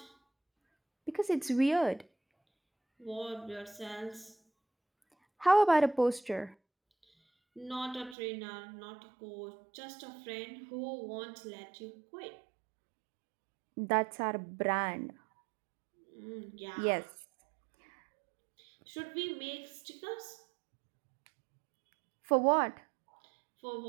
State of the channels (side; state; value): left; drops out; at 8.2 s